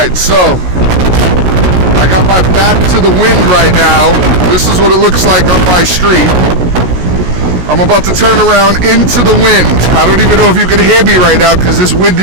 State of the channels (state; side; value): late; left; 16 ms